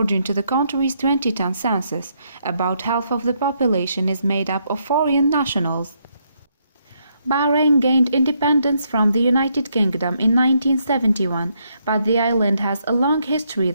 to the country's 2010 census, about half of the population is made up of foreign nationals. Bahrain gained independence from the United Kingdom in 1971, but the island has a long history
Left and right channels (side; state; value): both; inverted; correlation -0.75